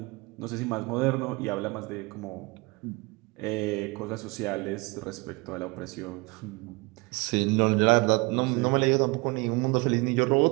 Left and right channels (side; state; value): left; quieter; 26.8 dB